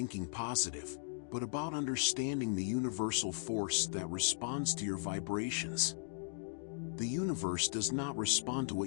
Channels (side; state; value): right; silent; digital silence